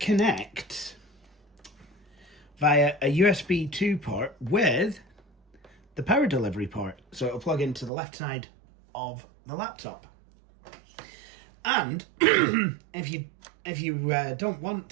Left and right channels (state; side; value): drops out; left; at 7.9 s